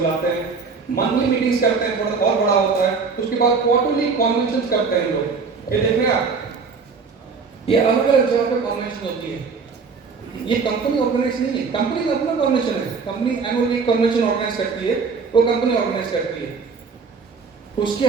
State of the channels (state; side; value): quieter; left; 5.0 dB